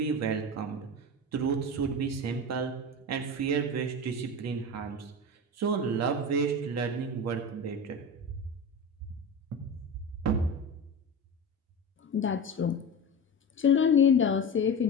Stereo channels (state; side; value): normal; both; correlation 0.26